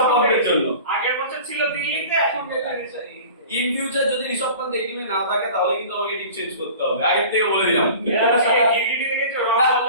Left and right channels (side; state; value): both; inverted; correlation -0.41